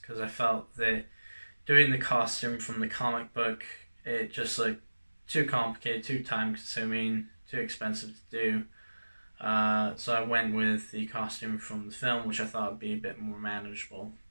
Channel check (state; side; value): inverted; both; correlation -1.00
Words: because I felt that doing the costume from the comic book, it just looked too complicated, too time consuming, too expensive to do. So I went with the costume from the film, which I thought would be a bit more manageable